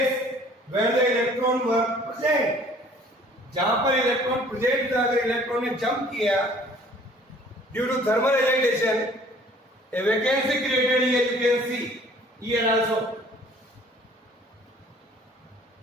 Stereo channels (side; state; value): both; normal; correlation 0.54